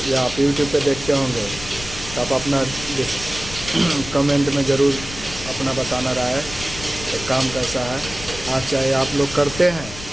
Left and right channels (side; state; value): left; noise; rumble, 12 dB below the sound